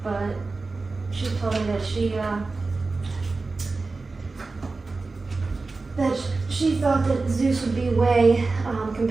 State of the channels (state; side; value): quieter; left; 3.8 dB